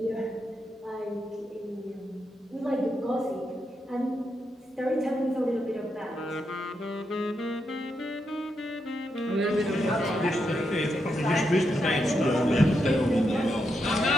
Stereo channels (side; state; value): both; normal; correlation 0.82